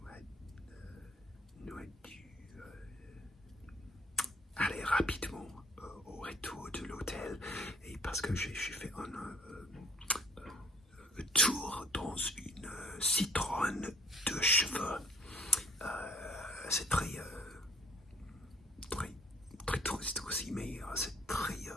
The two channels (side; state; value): both; normal; correlation 0.58